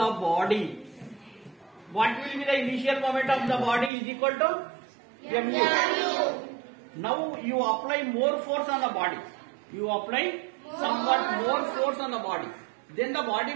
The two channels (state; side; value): drops out; left; at 3.9 s